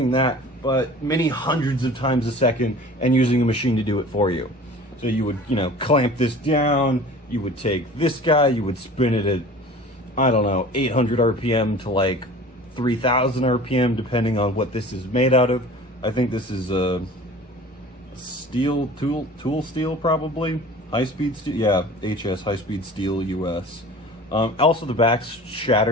that, but many hundreds of times a second, and using a machine to do it for you. So you would, clamp this down, you would take this guy, you would spin it at, 800 RPM to like 3,000 RPM, depending on what this is made out of. I think this is a steel, tool steel, probably. High-speed steel, yeah, HS, high-speed steel, US. Also, the back's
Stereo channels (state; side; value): normal; both; correlation 0.42